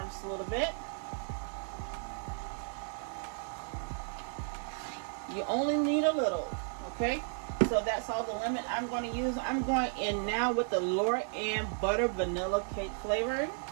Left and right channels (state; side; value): silent; left; 55 dB below the other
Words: just a little bit. You only need a little, okay? So that's all the lemon I'm going to use. I'm going in now with the Laura Ann Butter Vanilla Cake flavoring,